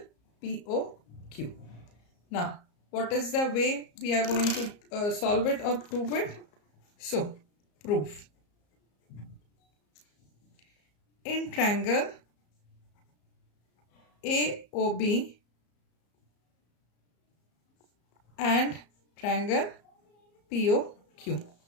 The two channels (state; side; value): late; right; 34 ms